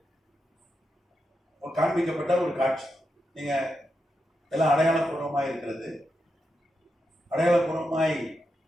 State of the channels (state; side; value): normal; both; correlation 0.86